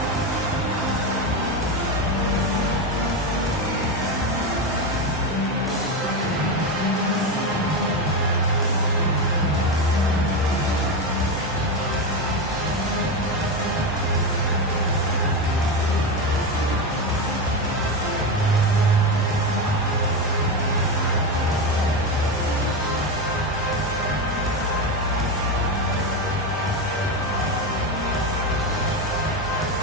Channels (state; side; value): normal; both; correlation 0.15